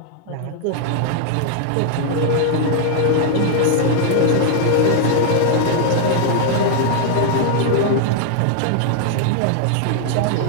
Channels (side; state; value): both; different; correlation -0.01